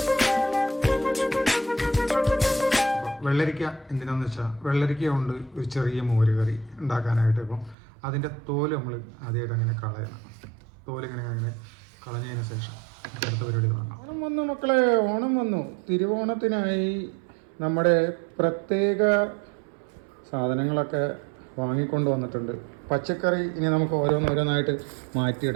വെള്ളരിക്ക എന്തിനാന്ന് വെച്ചാൽ വെള്ളരിക്ക കൊണ്ട് ഒരു ചെറിയ മോര് കറി ഉണ്ടാക്കാനായിട്ട്. ഇപ്പം അതിൻ്റെ തോല് നമ്മൾ ആദ്യമായിട്ട് അങ്ങനെ കളയണം. തോലിങ്ങനെ കളഞ്ഞതിന് ശേഷം അടുത്ത പരിപാടി തുടങ്ങാം. ഓണം വന്നു മക്കളെ, ഓണം വന്നു. തിരുവോണത്തിനായി നമ്മുടെ പ്രത്യേക സാധനങ്ങളൊക്കെ വാങ്ങിക്കൊണ്ട് വന്നിട്ടുണ്ട്. പച്ചക്കറി ഇനി നമുക്ക് ഓരോന്നായിട്ട്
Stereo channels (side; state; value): left; drops out; at 7.8 s